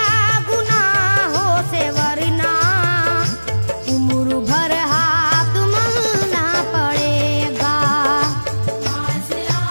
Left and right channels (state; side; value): inverted; both; correlation -1.00